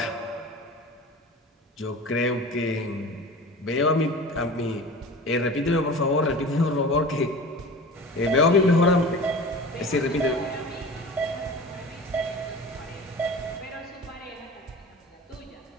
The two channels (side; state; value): both; normal; correlation 0.36